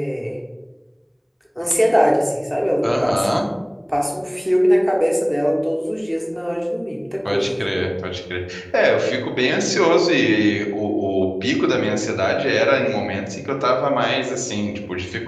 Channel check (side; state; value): both; identical; correlation 1.00